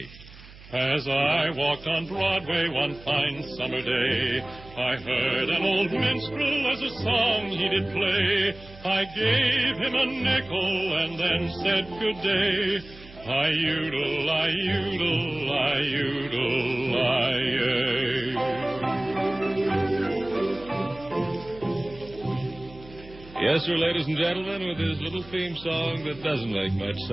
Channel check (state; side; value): noise; right; hum, 20 dB below the sound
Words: As I walked on Broadway one fine summer day, I heard an old minstrel as a song he did play. I gave him a nickel and then said good day. I-udle, I-udle, I-udle, I-ay. Yes, sir, ladies and gentlemen, with his little theme song that doesn't make much